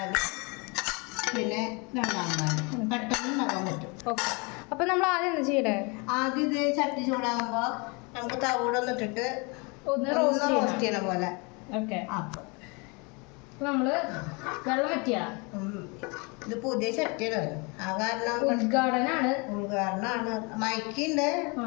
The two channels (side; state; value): right; quieter; 30.0 dB